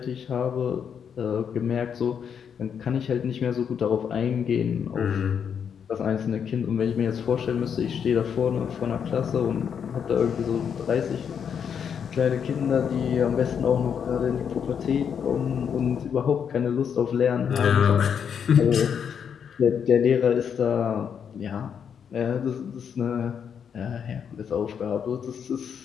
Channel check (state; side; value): quieter; right; 7.5 dB